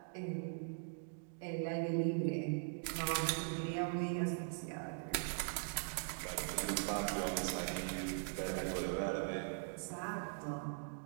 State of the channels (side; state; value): left; silent; digital silence